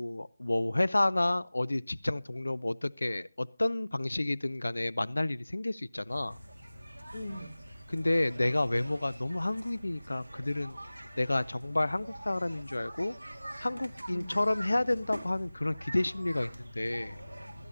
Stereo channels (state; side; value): inverted; both; correlation -1.00